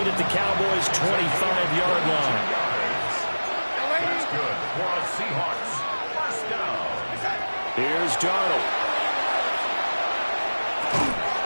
at the Cowboys' 25-yard line. That's good for a Seahawks first down. Here's Darnold.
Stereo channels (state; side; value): inverted; both; correlation -1.00